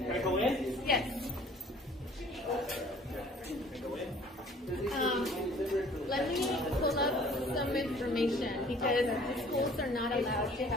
Can I go in? Yes. Let me pull up some information because the schools are not allowed to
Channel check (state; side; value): normal; both; correlation 0.52